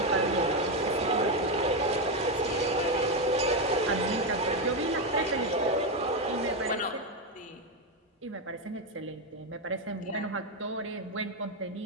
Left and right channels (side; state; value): both; normal; correlation 0.08